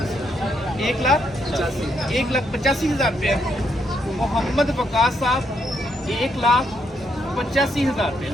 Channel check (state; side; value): normal; both; correlation 0.76